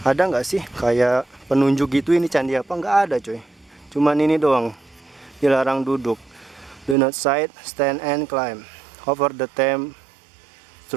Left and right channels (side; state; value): left; drops out; at 7.0 s